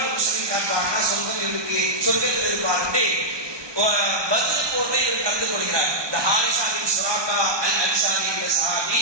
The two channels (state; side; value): late; left; 1.2 ms